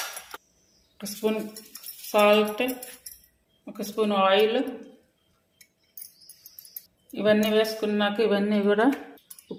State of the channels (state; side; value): identical; both; correlation 1.00